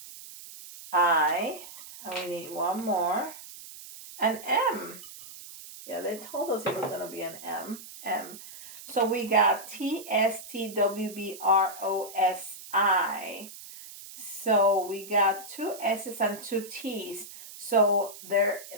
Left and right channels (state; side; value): noise; right; hiss, 15 dB below the sound